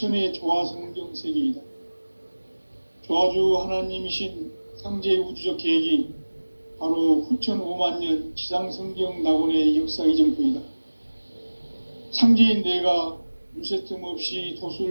조화성경 세계이다. 조화주 하나님이신 상제 우주적 계획이 바로 후천 5만 년 지상성경 낙원의 역사 이정표이다. 상제인 내가 물새틈 없이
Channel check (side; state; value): both; inverted; correlation -1.00